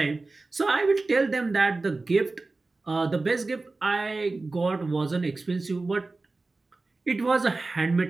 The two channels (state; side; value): quieter; left; 3.4 dB